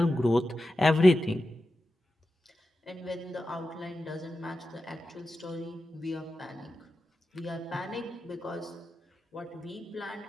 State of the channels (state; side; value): normal; both; correlation 0.92